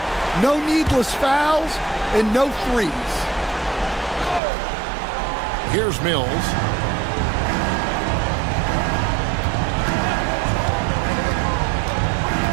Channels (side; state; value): left; drops out; at 4.4 s